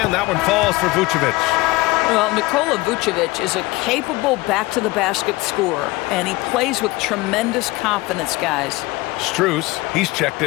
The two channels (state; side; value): quieter; right; 21.1 dB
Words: And that one falls for Vucevic. Well, Nikola Vucevic is a capable back-to-the-basket scorer, and he plays with tremendous confidence, guys. Strus, he's checked